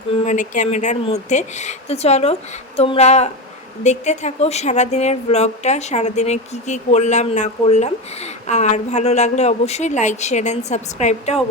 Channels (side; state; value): both; normal; correlation 0.19